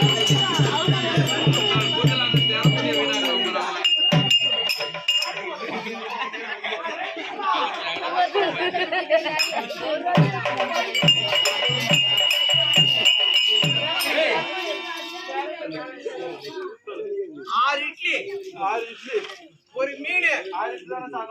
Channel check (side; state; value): both; identical; correlation 1.00